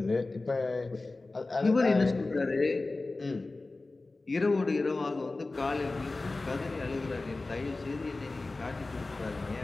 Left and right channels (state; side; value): quieter; right; 3.3 dB